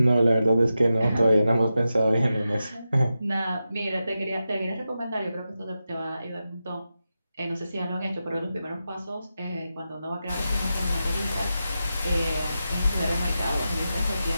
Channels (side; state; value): both; inverted; correlation -0.90